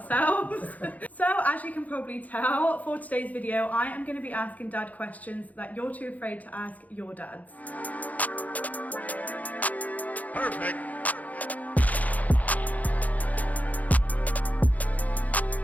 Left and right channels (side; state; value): right; late; 0.076 ms